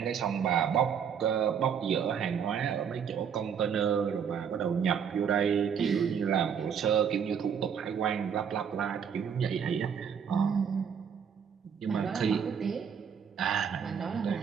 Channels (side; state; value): left; quieter; 7.4 dB